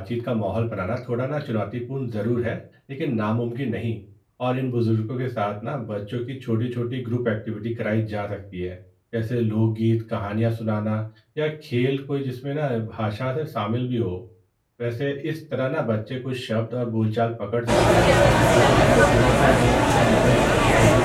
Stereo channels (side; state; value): both; identical; correlation 1.00